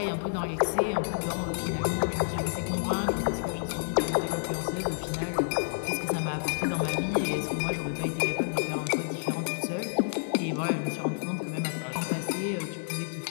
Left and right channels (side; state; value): right; silent; digital silence